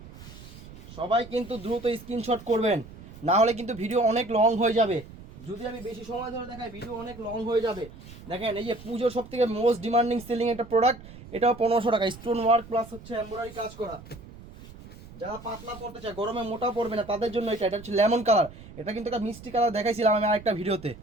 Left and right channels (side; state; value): right; noise; rumble, 17 dB below the sound